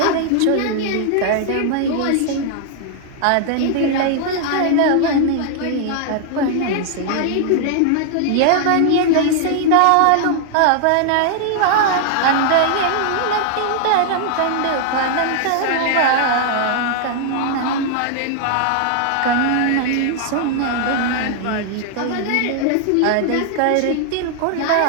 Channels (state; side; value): different; both; correlation 0.00